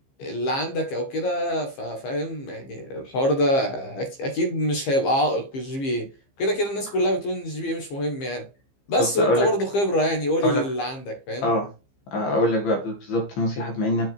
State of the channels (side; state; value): right; late; 15 ms